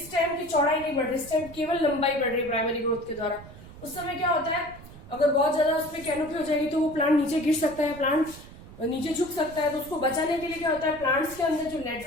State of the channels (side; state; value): right; noise; rumble, 17 dB below the sound